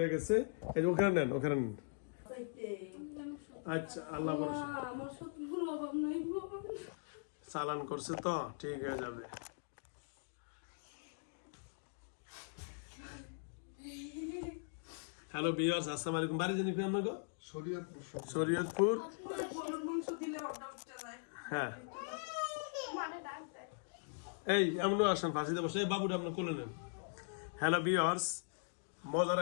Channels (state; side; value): silent; right; digital silence